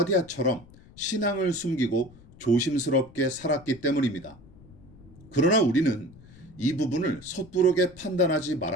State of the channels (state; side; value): noise; left; rumble, 22 dB below the sound